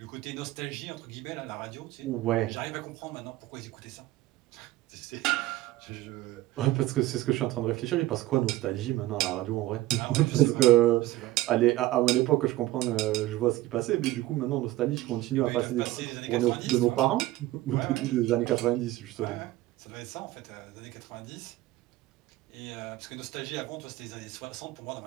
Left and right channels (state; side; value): quieter; left; 16.8 dB